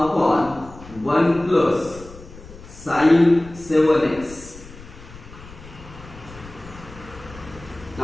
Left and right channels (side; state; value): left; noise; rumble, 18 dB below the sound